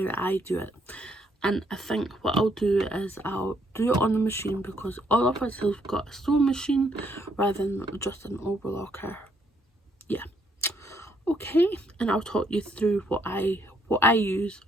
I do it. And I think what I'll do is I'll do it on the machine, because all of us have got a sewing machine rather than just an overlocker. Yeah. Okay, and I'll talk you through what I use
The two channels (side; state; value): both; normal; correlation 0.71